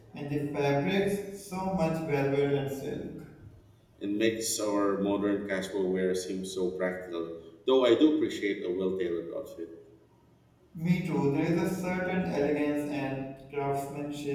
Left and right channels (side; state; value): both; identical; correlation 1.00